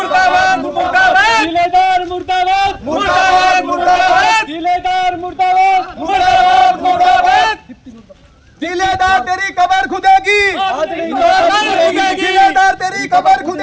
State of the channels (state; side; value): identical; both; correlation 1.00